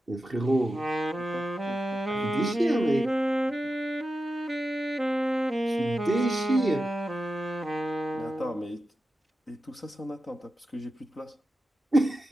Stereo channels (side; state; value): both; normal; correlation 0.92